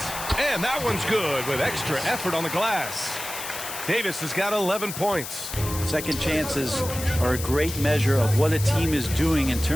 And that one's good with extra effort on the glass. Davis has got 11 points. Second chances are a great measure of what a team is doing in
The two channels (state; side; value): noise; left; hiss, 8 dB below the sound